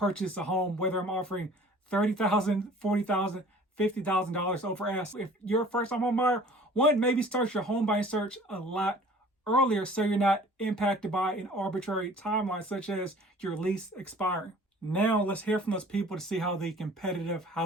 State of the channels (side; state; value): both; normal; correlation 0.49